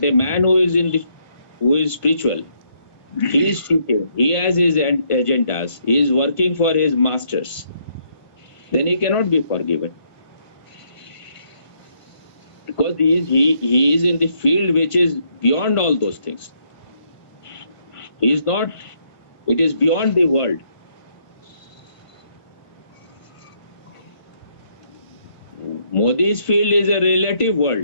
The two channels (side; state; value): right; late; 1.5 ms